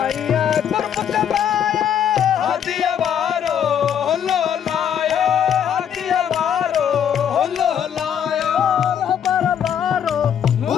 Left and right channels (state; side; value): quieter; right; 8.8 dB